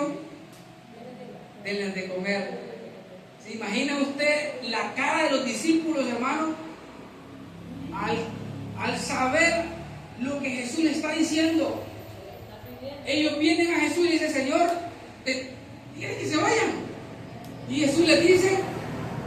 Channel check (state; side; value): identical; both; correlation 1.00